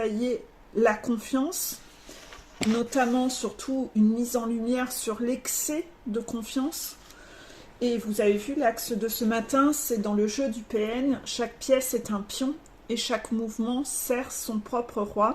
la confiance, notamment surtout une mise en lumière sur l'excès de confiance. Et vous avez vu l'axe de ce matin, c'est dans le jeu du PN, chaque pièce est un pion et chaque mouvement sert son propre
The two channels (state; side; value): identical; both; correlation 1.00